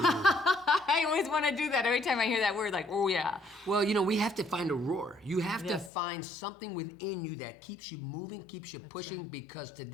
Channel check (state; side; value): drops out; right; at 5.9 s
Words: always want to do that every time I hear that word, like, oh yeah. Well, you know, we have to find a roar. You have to find something within you that keeps you moving, keeps you pushing, because